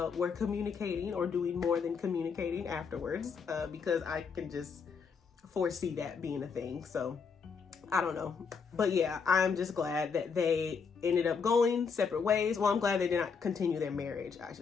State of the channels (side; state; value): right; quieter; 5.7 dB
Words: were communicating or doing more than communicating afterwards, because I can just foresee that being a thing. So I don't know. But yeah, I'm just glad that they ended up going separate ways. Well, I'm glad they did not continue their marriage, I